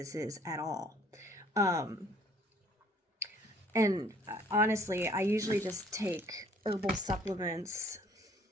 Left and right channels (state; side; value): normal; both; correlation 0.59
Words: is at all. And honestly, I usually just take herbal supplements,